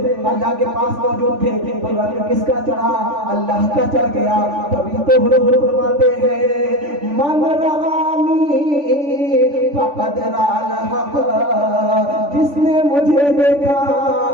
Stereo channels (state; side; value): late; left; 3.4 ms